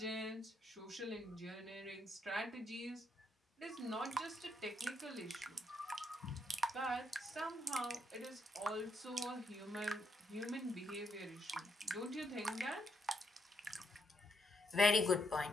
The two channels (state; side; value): normal; both; correlation 0.77